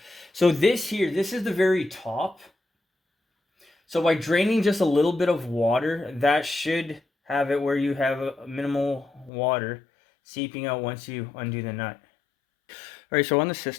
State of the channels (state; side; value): drops out; right; at 9.3 s